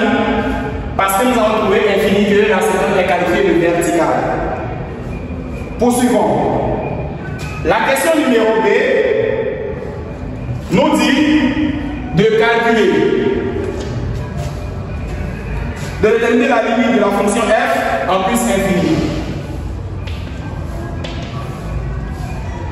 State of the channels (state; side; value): identical; both; correlation 1.00